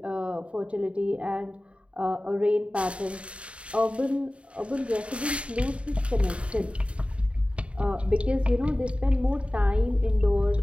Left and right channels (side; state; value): left; late; 0.061 ms